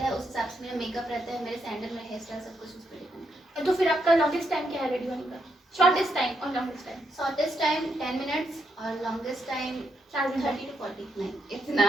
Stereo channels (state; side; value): normal; both; correlation 0.80